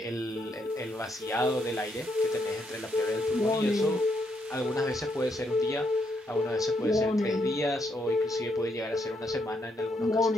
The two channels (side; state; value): both; normal; correlation 0.76